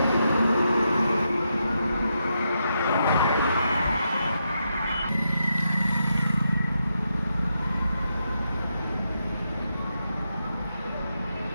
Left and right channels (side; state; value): both; inverted; correlation -0.83